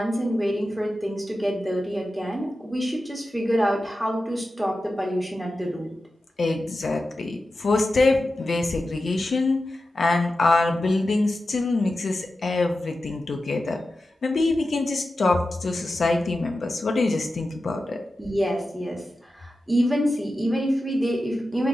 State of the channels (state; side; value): normal; both; correlation 0.92